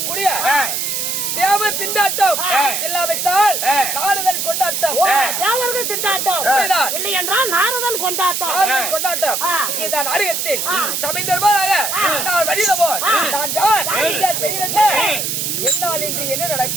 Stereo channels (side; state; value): right; noise; hiss, 1 dB below the sound